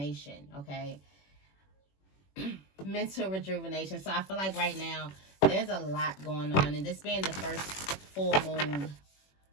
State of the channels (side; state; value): right; late; 21 ms